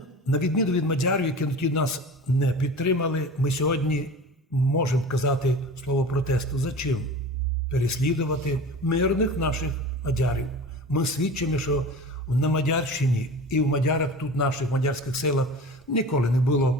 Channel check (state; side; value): normal; both; correlation 0.35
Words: на відміну від мадярів, які тоді нас не підтримали, ми сьогодні можемо казати слово протесту. За чим? Переслідувати мирних наших мадярів. Ми свідчимо, що на Мадярщині і в мадярах тут наших мадярських селах ніколи не